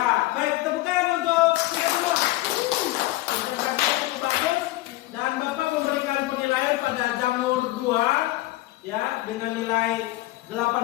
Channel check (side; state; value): right; quieter; 17.9 dB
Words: baik, tepuk tangan untuk kita semua. Presentasinya cukup bagus dan Bapak memberikan penilaian pada jamur 2 ya dengan nilai